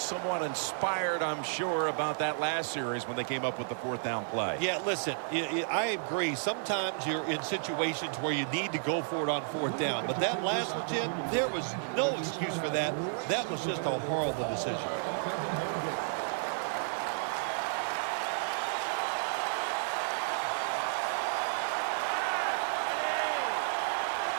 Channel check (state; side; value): silent; left; digital silence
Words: inspired, I'm sure, about that last series when they came up with the 4th down play. Yeah, listen, I agree. Sometimes you're in situations where you need to go for it on 4th down. But that last one, Jim, there was no excuse for that. That was just a horrible decision.